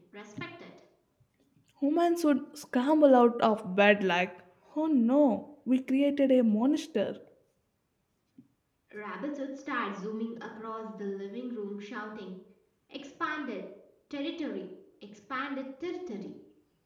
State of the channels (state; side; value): identical; both; correlation 1.00